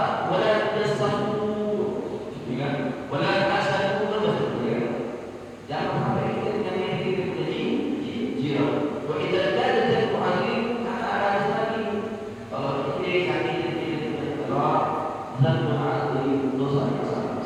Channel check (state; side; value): identical; both; correlation 1.00